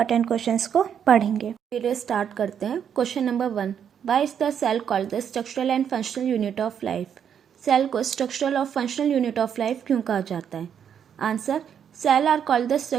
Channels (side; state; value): left; quieter; 8.3 dB